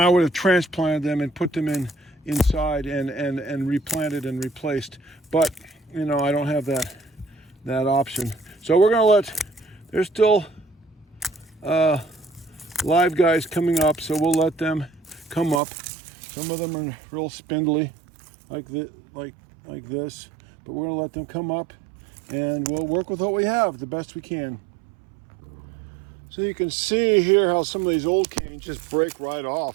would have transplanted them and put them inside and replanted and replaced. But I don't have that option. So we're gonna there's still live guys coming up, so we'll let them come up. Some of them are real spindly, like this, but we're gonna let them come up, and we'll work with what we have the best we can. So you can see here how some of these old canes just break right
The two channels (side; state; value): left; drops out; at 15.6 s